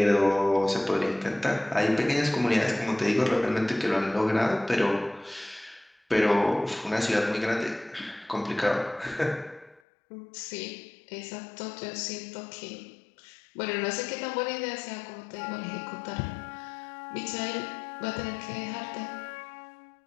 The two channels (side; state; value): right; drops out; at 9.8 s